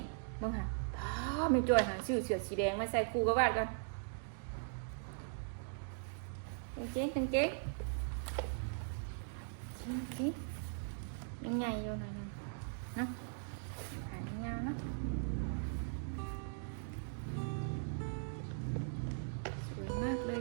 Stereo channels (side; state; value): left; silent; digital silence